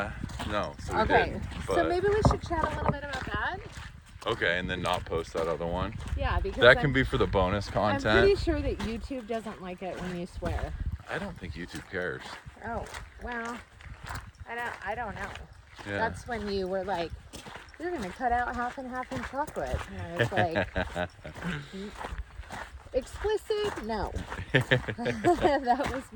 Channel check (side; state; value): both; identical; correlation 1.00